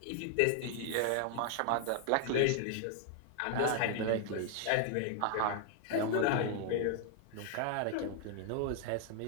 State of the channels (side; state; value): both; different; correlation 0.00